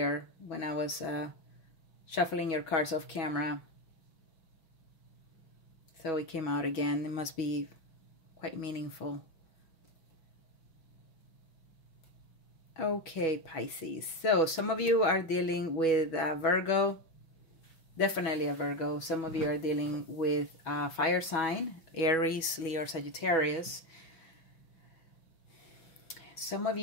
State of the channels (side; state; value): right; late; 6.2 ms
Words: when I was shuffling your cards off camera. So it came out again. It must be quite meaningful. Okay, Pisces. So some of you are dealing with Virgo. Definitely a Virgo. Some of you are dealing with fire sign, Aries, Leo, or Sagittarius. Some of